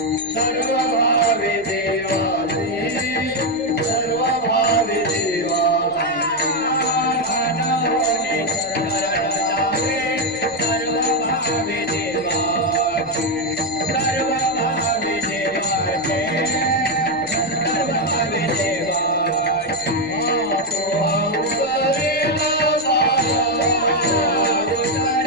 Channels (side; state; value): left; noise; rumble, 25 dB below the sound